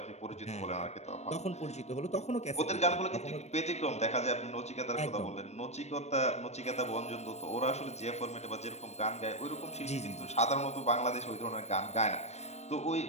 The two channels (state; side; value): late; right; 0.32 ms